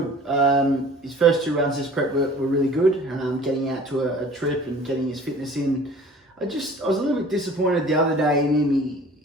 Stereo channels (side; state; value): both; normal; correlation 0.47